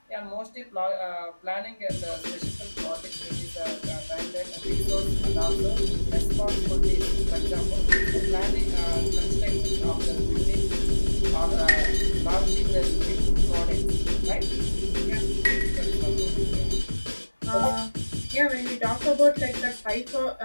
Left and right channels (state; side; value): inverted; both; correlation -1.00